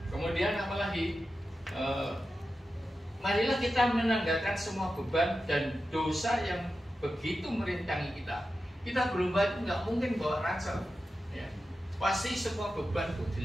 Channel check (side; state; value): both; normal; correlation 0.92